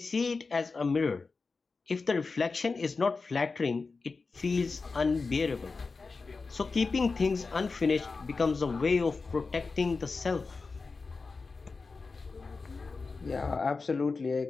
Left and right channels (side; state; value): right; quieter; 4.2 dB